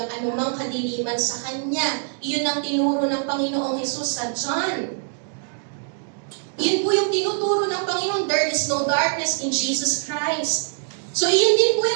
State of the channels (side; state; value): left; silent; digital silence